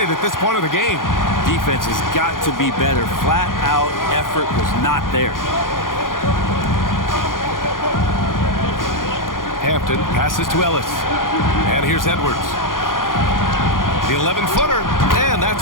at this point of the game. Defense has got to be better. Flat out effort was not there. Hampton passes to Ellis. And here's Edwards. The 11-footer, and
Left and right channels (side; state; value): right; late; 0.90 ms